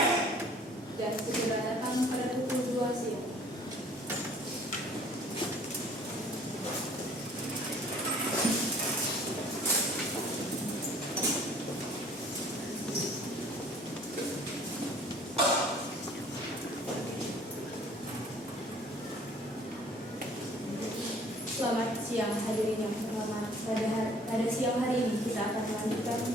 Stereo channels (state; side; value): normal; both; correlation 0.54